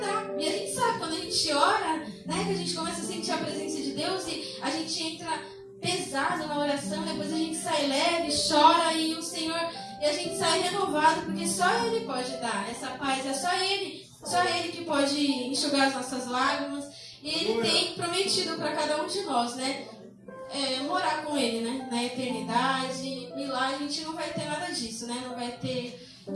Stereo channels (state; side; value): identical; both; correlation 1.00